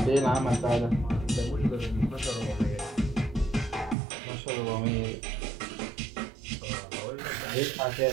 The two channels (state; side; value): drops out; left; at 4.0 s